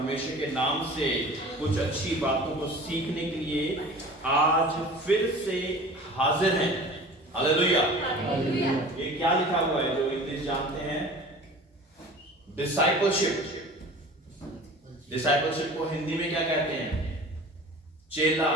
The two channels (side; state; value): both; normal; correlation 0.41